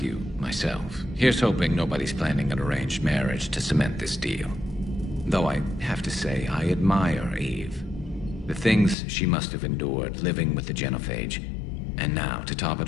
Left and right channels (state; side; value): drops out; right; at 9.0 s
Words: myself. Here's hoping nobody's planning an arranged marriage to cement this deal. Though I have to say, I admire Eve. The things she must have endured living with the Genophage. And now, to top it